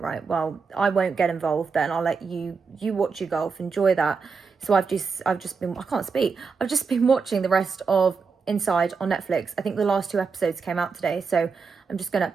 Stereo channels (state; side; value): quieter; left; 5.2 dB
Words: well, I won't get involved then. I'll let you watch your golf, enjoy that. So I've just been, I can't speak. I've just been watching the rest of Inside on Netflix. I think the last 2 episodes came out today. So I'm just going to